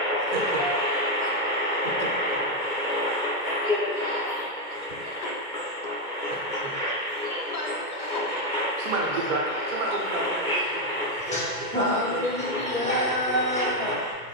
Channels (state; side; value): late; left; 2.2 ms